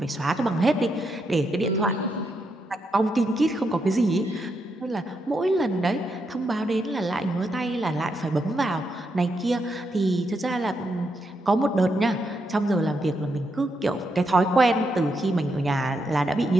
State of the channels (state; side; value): normal; both; correlation 0.81